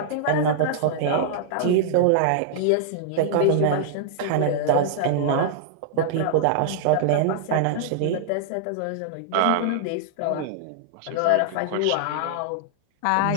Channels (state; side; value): different; both; correlation -0.01